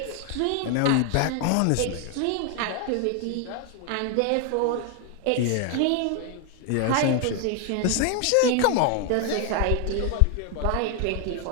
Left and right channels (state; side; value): different; both; correlation 0.01